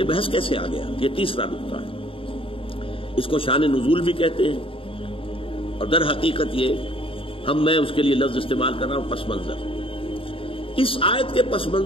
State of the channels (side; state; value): right; late; 0.26 ms